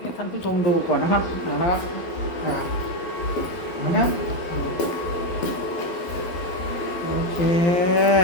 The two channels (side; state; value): right; late; 12 ms